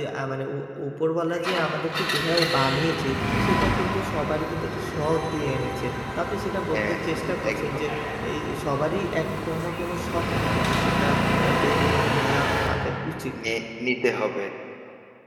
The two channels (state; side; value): identical; both; correlation 1.00